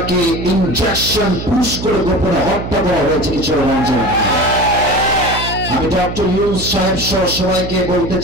ইনজেকশন পুশ করে গোপনে হত্যা করা হয়েছে কিশোরগঞ্জে। আমি ডক্টর ইউনূস সাহেব সহ সবাইকে বলতে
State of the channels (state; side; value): noise; right; hum, 8 dB below the sound